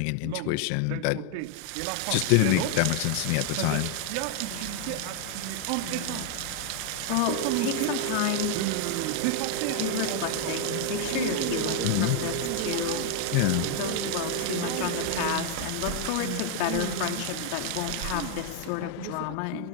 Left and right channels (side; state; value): both; different; correlation 0.00